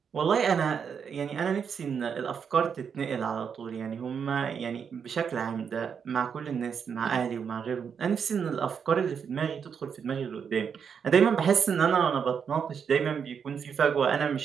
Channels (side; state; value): left; quieter; 6.9 dB